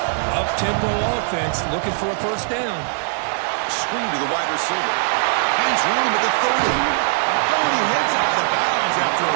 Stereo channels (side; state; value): left; silent; digital silence